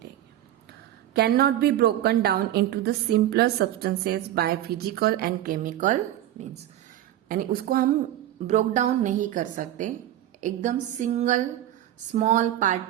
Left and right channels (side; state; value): left; quieter; 12.7 dB